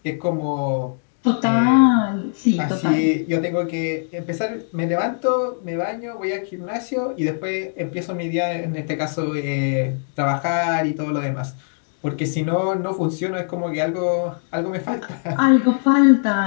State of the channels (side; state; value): right; silent; digital silence